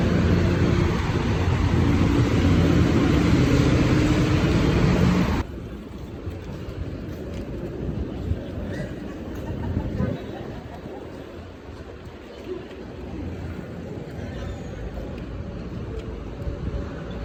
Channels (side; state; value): both; identical; correlation 1.00